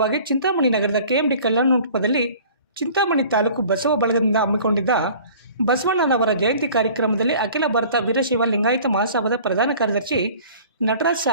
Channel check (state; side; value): inverted; both; correlation -0.47